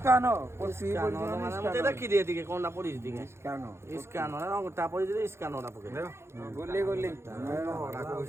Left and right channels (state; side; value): late; left; 0.13 ms